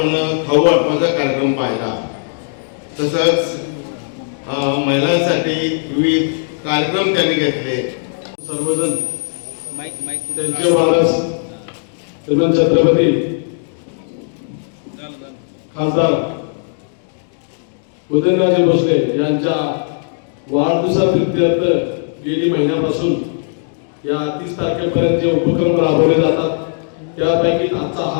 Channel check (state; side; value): silent; right; digital silence